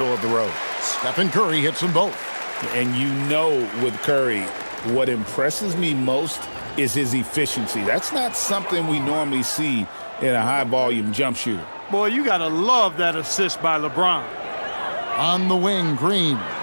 of the road. Stephen Curry hits them both. And you know with Curry, what impresses me most is his efficiency. That's not something we normally see in a high-volume jump shooter. Boy, you got to love that assist by LeBron. On the wing, Green.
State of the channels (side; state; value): both; inverted; correlation -1.00